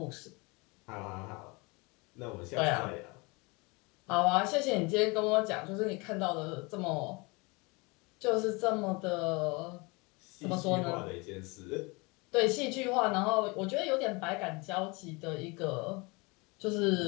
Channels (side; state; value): right; quieter; 27.1 dB